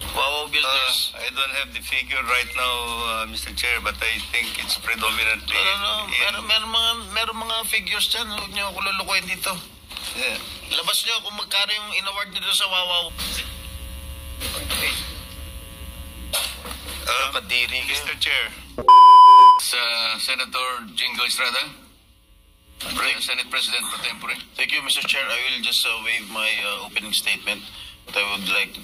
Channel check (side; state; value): both; identical; correlation 1.00